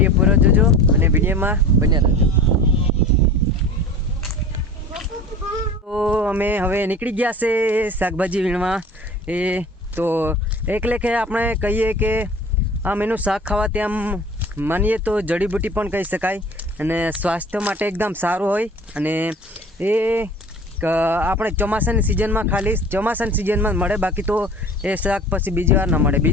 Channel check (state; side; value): normal; both; correlation 0.40